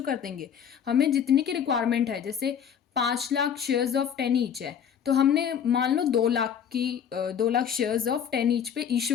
कर देंगे, हमें जितनी की रिक्वायरमेंट है। जैसे 5 लाख शेयर्स ऑफ 10 ईच है, तो हमने मान लो 2 लाख शेयर्स ऑफ 10 ईच पे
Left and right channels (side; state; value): right; quieter; 8.2 dB